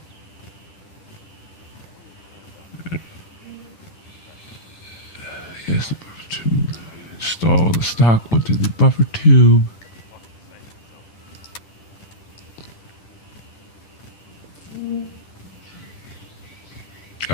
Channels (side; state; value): right; late; 10 ms